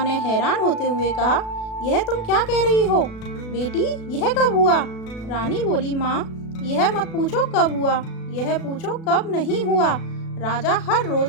ने हैरान होते हुए कहा, यह तुम क्या कह रही हो बेटी, यह कब हुआ? रानी बोली, माँ, यह मत पूछो कब हुआ, यह पूछो कब नहीं हुआ। राजा हर रोज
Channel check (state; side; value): late; right; 36 ms